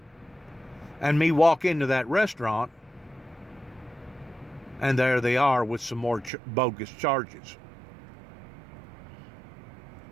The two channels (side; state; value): left; drops out; at 6.3 s